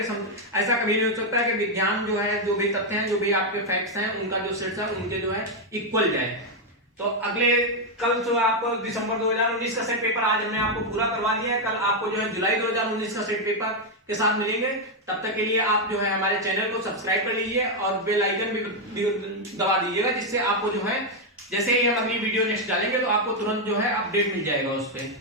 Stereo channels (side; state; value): both; normal; correlation 0.02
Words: ऐसा कभी नहीं हो सकता है कि विज्ञान जो है जो भी तथ्य हैं, जो भी आपके फैक्ट्स हैं, उनका जो सेट्स है उनके जो है इक्वल जाए। तो अगले कल जो आपको दिसंबर 2019 का सेट पेपर आज हमने आपको पूरा करवा दिया है, कल आपको जो है जुलाई 2019 का सेट पेपर के साथ मिलेंगे। तब तक के लिए आप जो है हमारे चैनल को सब्सक्राइब कर लीजिए और बेल आइकन भी दबा दीजिएगा, जिससे आपको जो है जैसे ही हम अगली वीडियो नेक्स्ट डालेंगे तो आपको तुरंत जो है अपडेट मिल जाएगा उस पर।